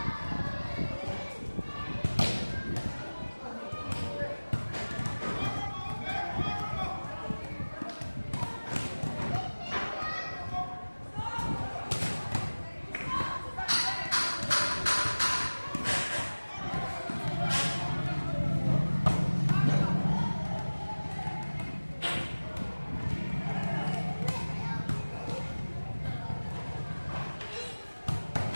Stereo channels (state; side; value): inverted; both; correlation -1.00